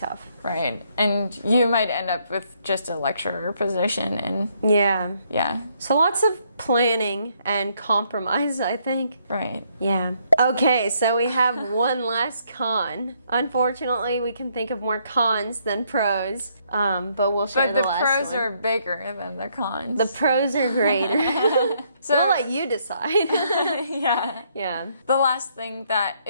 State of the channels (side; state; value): both; inverted; correlation -0.71